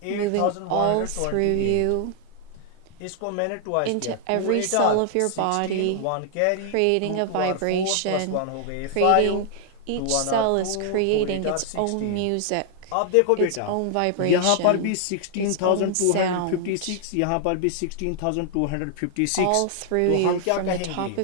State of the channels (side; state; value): both; different; correlation 0.00